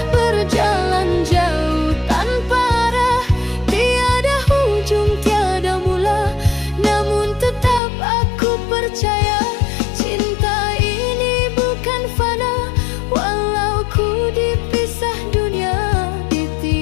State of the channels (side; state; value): right; drops out; at 7.8 s